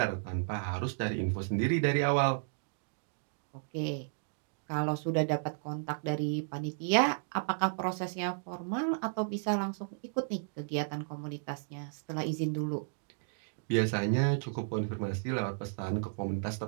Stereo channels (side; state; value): left; silent; digital silence